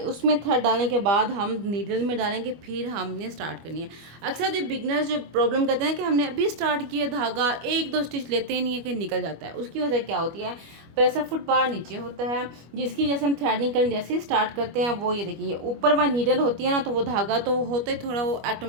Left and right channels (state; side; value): late; left; 25 ms